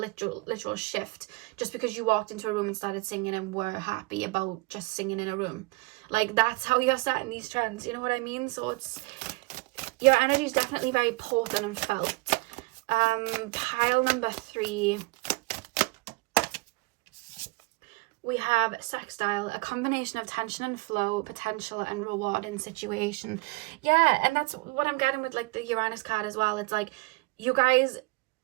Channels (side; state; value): left; quieter; 26.5 dB